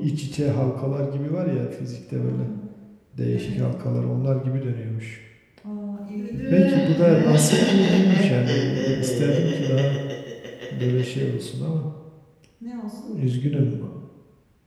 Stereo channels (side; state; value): both; identical; correlation 1.00